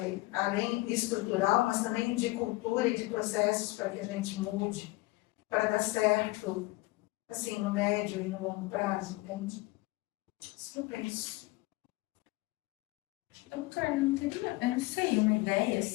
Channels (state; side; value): quieter; right; 21.5 dB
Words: além estrutural, mas também de cultura e de processos para que a gente mude, para dar certo, assim, no médio e no longo prazo, entende? Isso que eu penso. Doutor, não teria, eu não sei, uma ideia,